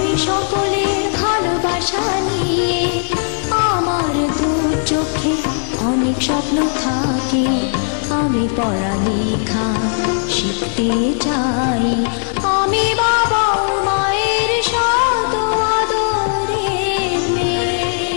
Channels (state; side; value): silent; right; digital silence